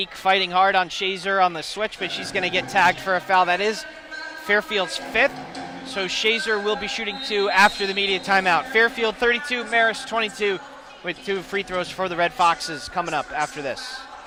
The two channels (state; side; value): identical; both; correlation 1.00